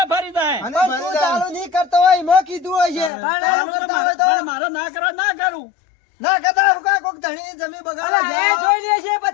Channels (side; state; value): right; drops out; at 3.1 s